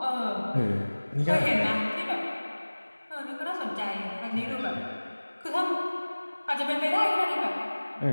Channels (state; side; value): inverted; both; correlation -1.00